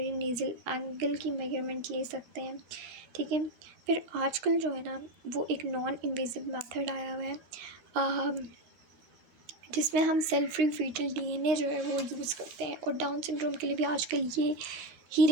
नेज़ल एंगल की मेजरमेंट ले सकते हैं। ठीक है। फिर आजकल जो है ना वो एक नॉन इन्वेजिव मेथड आया हुआ है जिसमें हम सेल फ्री फीटल DNA जो है वो यूज़ करते हैं, और डाउन सिंड्रोम के लिए भी आजकल ये ही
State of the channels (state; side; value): late; left; 13 ms